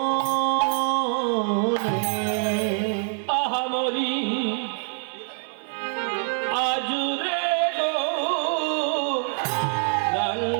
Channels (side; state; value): left; silent; 62 dB below the other